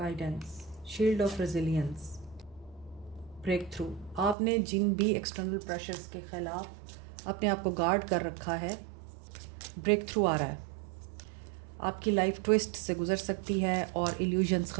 shield of resilience, breakthrough. आपने जिन भी एक्सटर्नल प्रेशर्स के ख़िलाफ़ अपने आप को गार्ड कर रखा है, ब्रेक थ्रू आ रहा है। आपकी लाइफ ट्विस्ट से गुजर सकती है और इल्यूजन्स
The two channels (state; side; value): drops out; left; at 4.4 s